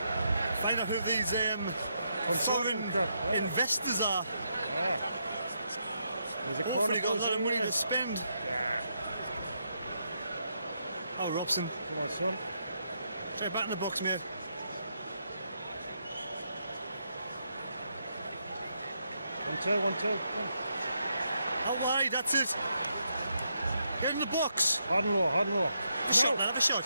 Find out who these foreign investors are. Yeah. There's a Hopefully corner got a lot of money there. to spend. Yeah. Oh, Robson. Come on, son. Try back in the box, mate. 1-2, 1-2. How wide? That's it. Get in the box. Hard and low, hard and low. Have a shot, man, have a shot.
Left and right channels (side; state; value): both; inverted; correlation -0.80